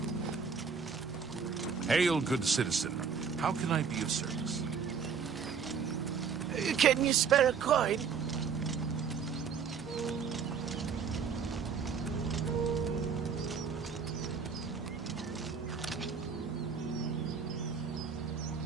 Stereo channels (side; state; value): left; quieter; 6.2 dB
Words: Hail, good citizen. How can I be of service? Can you spare a coin?